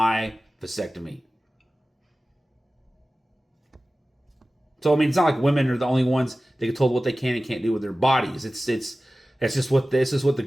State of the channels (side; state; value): both; normal; correlation 0.96